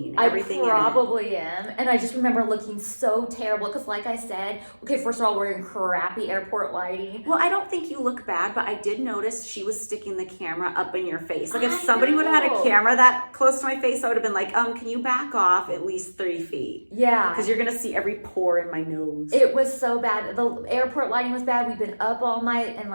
Everything I probably am. And I just remember looking so terrible because like I said, okay, first of all, we're in crappy airport lighting. Well, I don't think you look bad, but I did notice she was sticking the camera up in your face. Like if somebody would have had a camera that close to my face, I would have been like, can you back off at least 3 feet? Yeah. Because you're going to see every pore in my nose. It was so bad. The airport lighting was bad. We've been up all night and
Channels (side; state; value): both; inverted; correlation -1.00